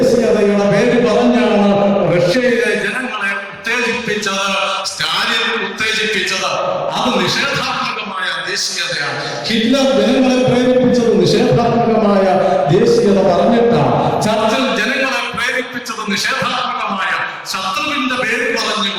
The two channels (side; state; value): both; identical; correlation 1.00